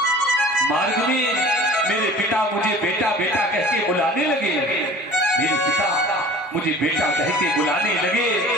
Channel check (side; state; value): both; normal; correlation 0.44